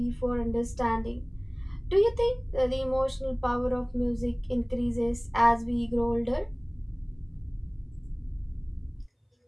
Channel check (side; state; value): both; identical; correlation 1.00